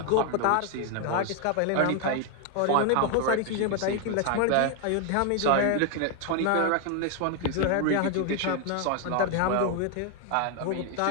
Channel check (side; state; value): both; different; correlation 0.00